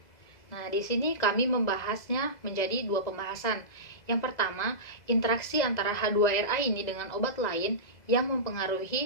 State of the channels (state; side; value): late; right; 2.0 ms